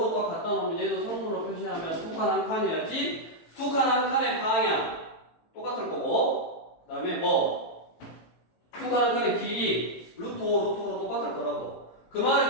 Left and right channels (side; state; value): right; late; 18 ms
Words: 또 갖다 놓으면 얘도 성분으로 표시하면 두 칸 한 칸이어야지 두 칸 한 칸의 방향 똑같을 거고 그 다음에 두 칸 한 칸의 길이 루트 5, 루트 5로 똑같을 거라고. 그